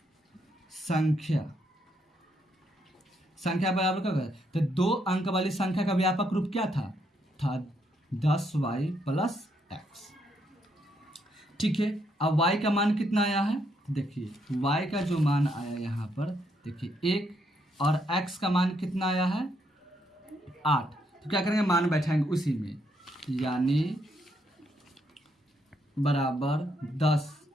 संख्या बराबर क्या होगा, तो 2 अंक वाली संख्या का व्यापक रूप क्या था 10y प्लस x। ठीक है, अब y का मान कितना आया है, देखिए y का जो मान आया यहाँ पर, देखिए 1, और x का मान कितना आया है 8। तो क्या करेंगे, मान बैठाएंगे उसी में, यानी बराबर 10,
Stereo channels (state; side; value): normal; both; correlation 0.75